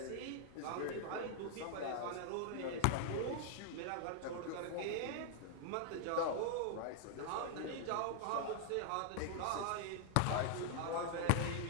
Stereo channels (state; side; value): different; both; correlation -0.01